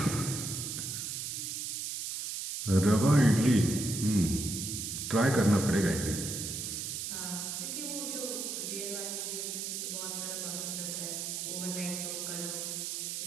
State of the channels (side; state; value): right; noise; hiss, 4 dB below the sound